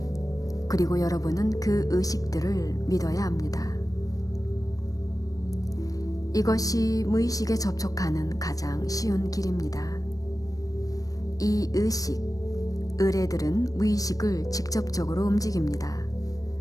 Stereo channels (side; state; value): right; late; 0.17 ms